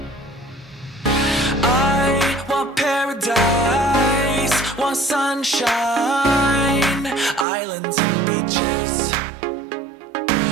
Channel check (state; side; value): drops out; left; at 7.5 s